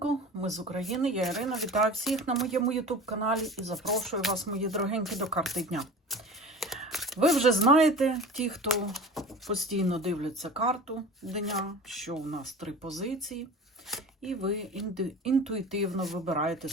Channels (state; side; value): normal; both; correlation 0.37